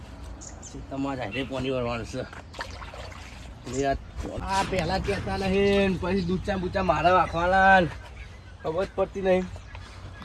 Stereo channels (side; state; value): both; identical; correlation 1.00